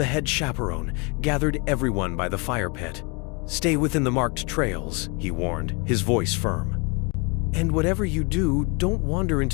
head chaperone, gathered everyone by the fire pit. "Stay within the marked trails," he warned, his voice firm. "And whatever you do, don't wander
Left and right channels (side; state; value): right; quieter; 30.9 dB